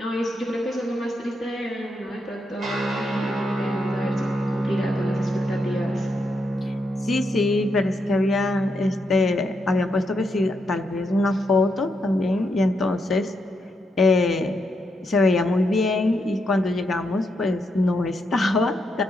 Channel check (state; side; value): normal; both; correlation 0.81